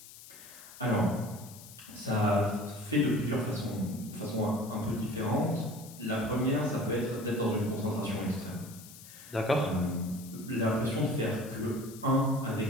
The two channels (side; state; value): left; noise; hiss, 17 dB below the sound